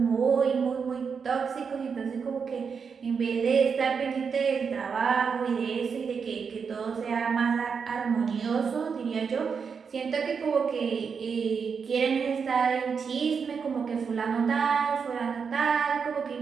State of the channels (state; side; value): quieter; left; 6.0 dB